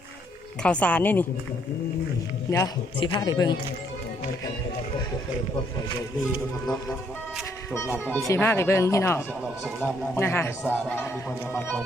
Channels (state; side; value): normal; both; correlation 0.70